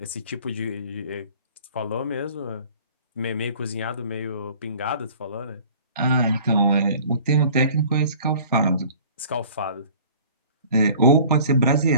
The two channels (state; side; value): inverted; both; correlation -0.49